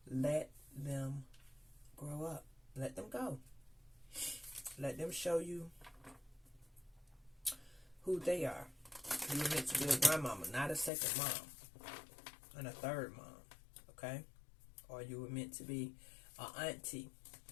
Let them grow up. Let them go. Let them show you who they are. You were meant to be a grandmama, not a second mom and a third mom, okay? Or you were meant to be an auntie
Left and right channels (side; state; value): right; drops out; at 10.9 s